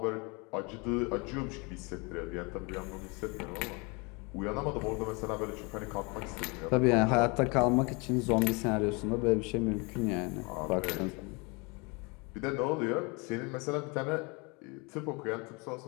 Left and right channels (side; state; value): right; quieter; 29.6 dB